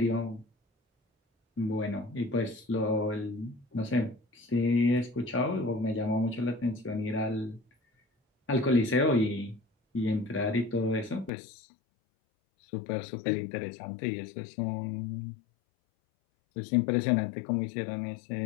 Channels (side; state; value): right; drops out; at 11.3 s